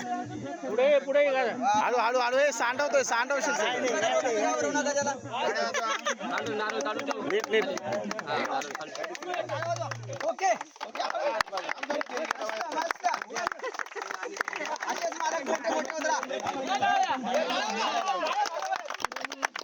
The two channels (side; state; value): both; identical; correlation 1.00